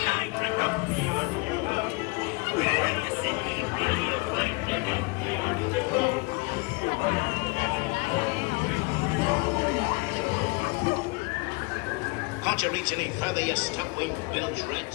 Can't you reach any further, you stump-winged bilge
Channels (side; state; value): right; quieter; 28.3 dB